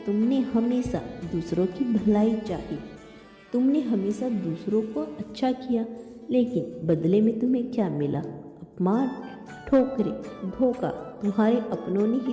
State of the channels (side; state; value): both; identical; correlation 1.00